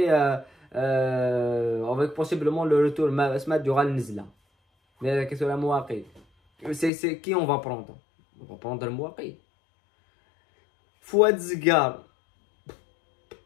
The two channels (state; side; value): drops out; right; at 6.9 s